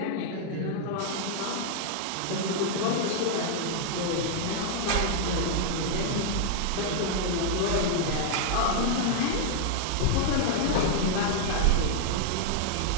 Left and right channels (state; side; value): different; both; correlation -0.01